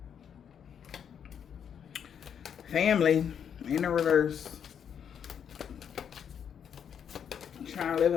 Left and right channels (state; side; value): quieter; right; 8.1 dB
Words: Family in the reverse. Trying to live